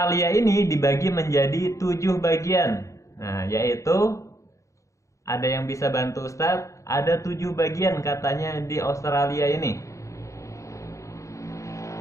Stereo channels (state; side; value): late; right; 0.15 ms